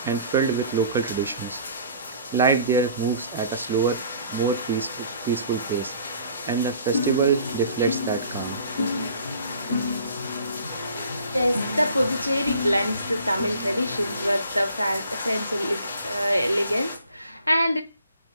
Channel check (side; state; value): both; inverted; correlation -0.52